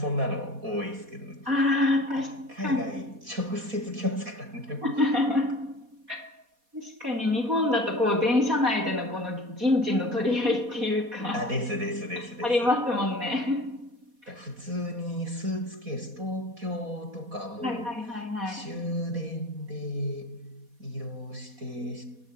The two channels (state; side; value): late; left; 4.2 ms